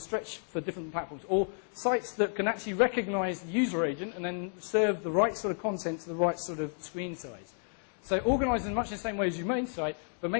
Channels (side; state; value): right; silent; 57 dB below the other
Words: for different platforms, or sites that can actually recognise the user agent and then serve the right sort of content to the right sort of screen size. So organise in much the same way as you make site, but